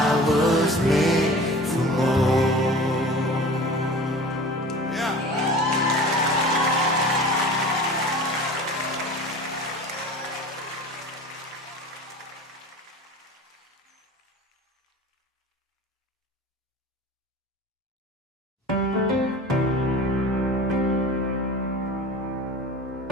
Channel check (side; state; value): both; normal; correlation 0.39